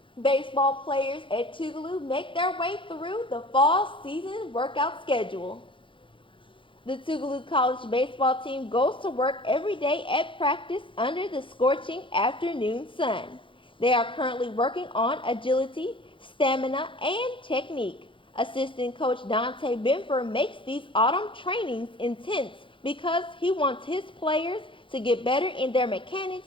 Baseball players at Tougaloo make their way through the fall season workout schedule. The Tougaloo College baseball team goes to work every day at practice under the scorching afternoon sun. They are currently working on agility, stamina, and technique. Assistant coach Dante Benfer makes these autumn trainings intense because he wants his players to get better in their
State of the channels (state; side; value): late; right; 0.25 ms